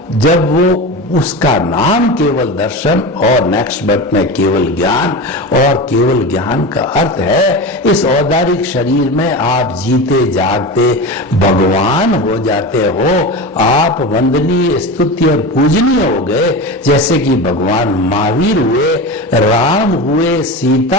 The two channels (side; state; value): both; normal; correlation 0.26